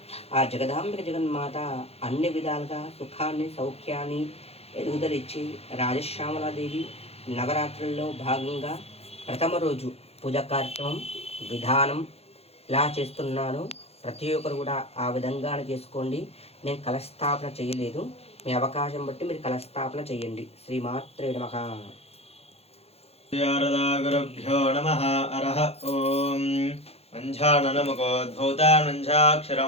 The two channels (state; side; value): late; right; 0.29 ms